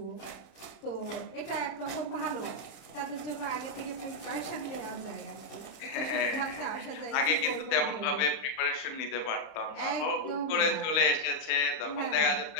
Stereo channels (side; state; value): right; late; 31 ms